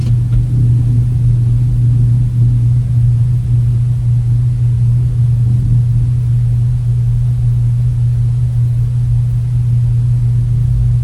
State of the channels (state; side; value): identical; both; correlation 1.00